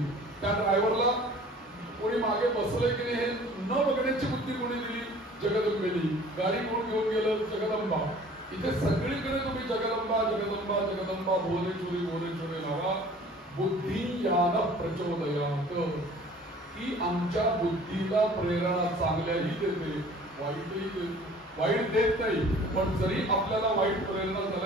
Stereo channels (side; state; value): both; normal; correlation 0.49